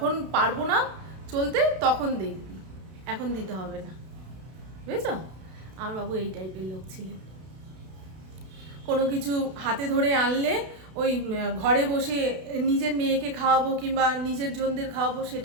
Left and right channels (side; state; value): left; late; 32 ms